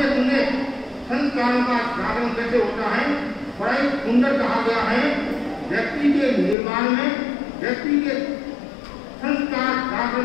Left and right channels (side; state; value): right; drops out; at 6.6 s